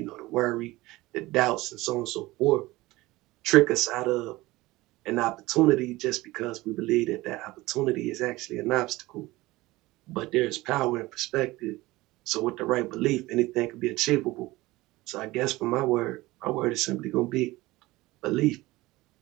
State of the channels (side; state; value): left; quieter; 19.5 dB